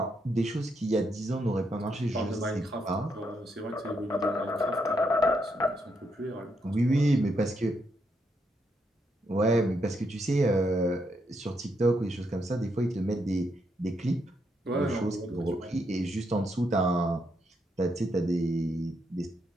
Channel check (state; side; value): normal; both; correlation 0.78